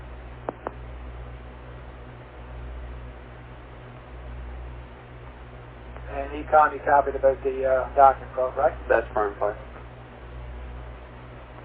And Econ, you copied about the docking probe, right? That's firm, Flash.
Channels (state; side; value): identical; both; correlation 1.00